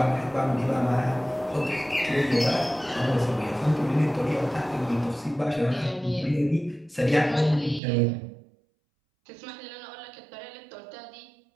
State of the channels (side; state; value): left; drops out; at 7.8 s